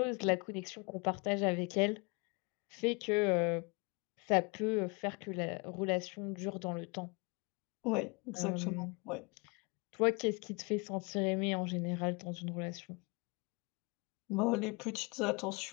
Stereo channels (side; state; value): right; quieter; 29.7 dB